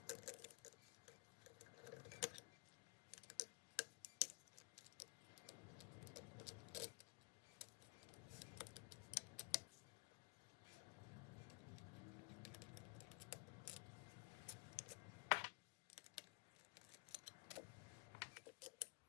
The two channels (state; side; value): quieter; right; 21.6 dB